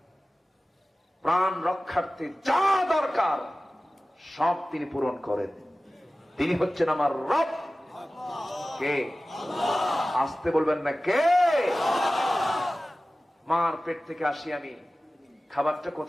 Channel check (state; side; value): normal; both; correlation 0.96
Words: প্রাণ রক্ষার্থে যা দরকার সব তিনি পূরণ করেন। তিনি হচ্ছেন আমার রব। কে? আসতে বলবেন না, কে? মার পেট থেকে আসি আমি, খাবারটা